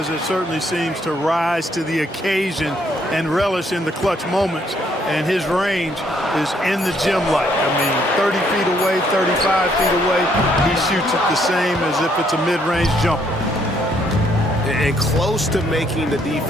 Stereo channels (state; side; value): normal; both; correlation 0.69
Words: that certainly seems to rise to the occasion and relish in the clutch moments. And his range is in the gym like. I mean, 30 feet away, 35 feet away, he shoots it the same as if it's a mid-range jumper. And close to making the